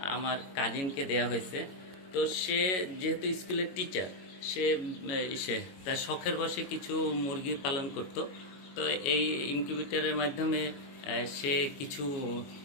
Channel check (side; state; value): right; late; 22 ms